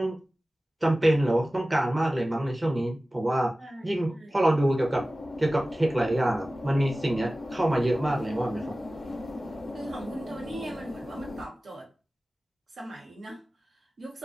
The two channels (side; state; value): both; normal; correlation 0.97